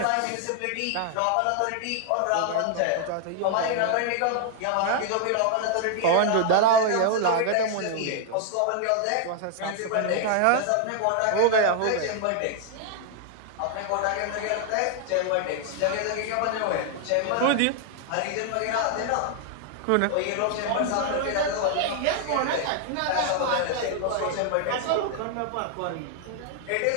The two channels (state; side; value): different; both; correlation 0.00